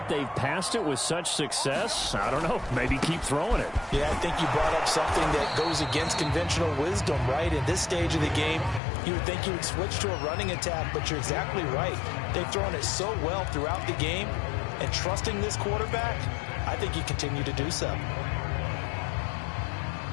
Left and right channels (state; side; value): drops out; right; at 8.8 s